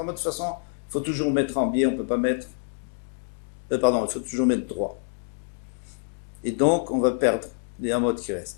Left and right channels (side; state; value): right; silent; digital silence